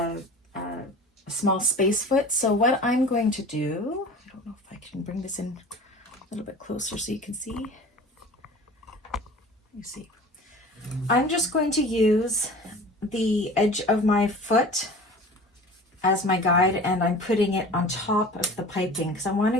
a small space foot. So what I'm going to do, I don't know if I can bring this in a little bit closer so you can see. Let me see. I'm just going to use the edge of my foot as my guide, and I'm putting it on top of the piping because I want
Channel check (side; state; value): both; normal; correlation 0.40